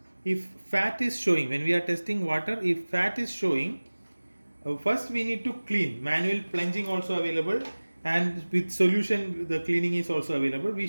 if fat is showing, when we are testing water, if fat is showing, first we need to clean. Manual plunging also available, and with solution the cleaning is also available. We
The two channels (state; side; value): inverted; both; correlation -1.00